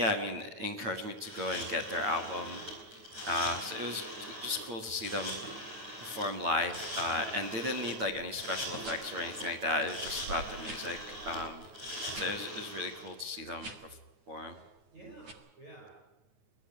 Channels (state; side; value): late; left; 9.3 ms